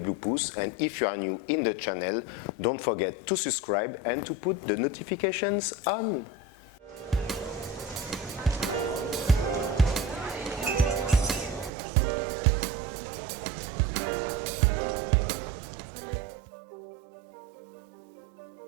pouce, and if you are new in the channel, don't forget to subscribe and to put the notifications on. Hello los papitos y papitas. Today we're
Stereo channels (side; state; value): left; drops out; at 11.7 s